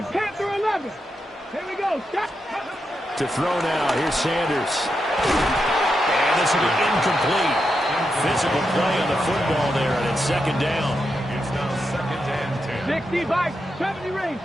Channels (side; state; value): both; normal; correlation 0.86